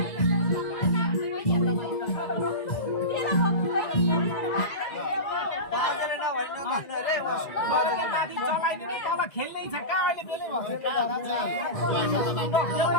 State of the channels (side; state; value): right; late; 1.9 ms